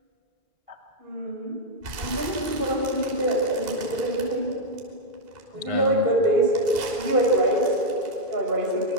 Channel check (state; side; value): late; left; 2.7 ms